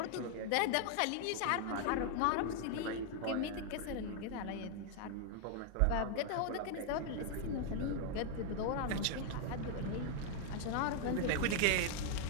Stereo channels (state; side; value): different; both; correlation 0.00